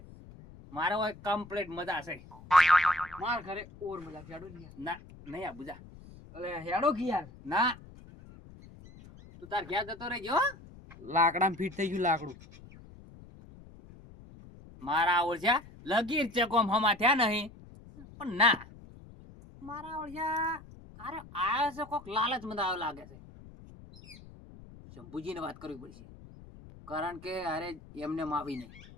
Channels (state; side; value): noise; left; rumble, 19 dB below the sound